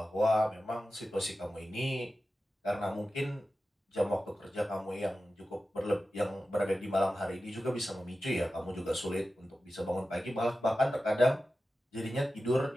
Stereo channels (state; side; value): normal; both; correlation 0.93